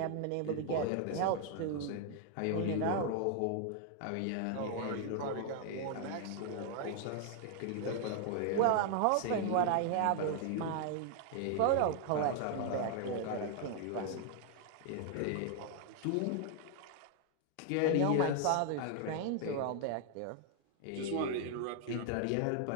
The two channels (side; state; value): both; different; correlation 0.00